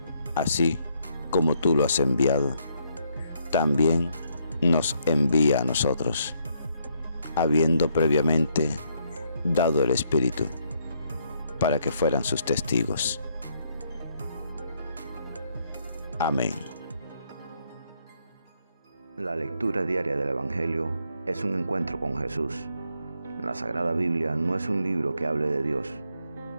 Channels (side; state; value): both; inverted; correlation -0.73